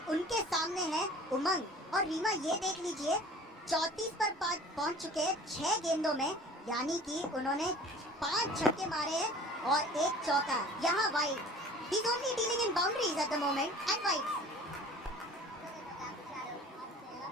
उनके सामने है उमंग। और रीमा, ये देख लीजिए, 34 पर पहुंच चुके 6 गेंदों में, यानी कि उन्होंने 5 छक्के मारे हैं और 1 चौका। यहाँ wide, he is only dealing in boundaries at the moment and wide।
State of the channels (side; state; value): both; normal; correlation 0.45